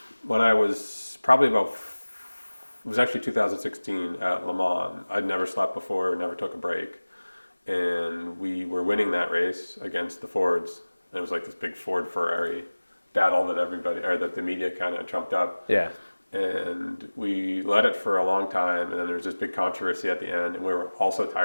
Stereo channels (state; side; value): inverted; both; correlation -1.00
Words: when I was probably it was actually 2016 at Le Mans. I'd never slept before, never took a break, and we were winning that race against the Fords. It was like this big Ford Ferrari battle that the media kind of trumped up. Yeah. And we led it for a long time, and then there was this big controversy at the end, and we were all so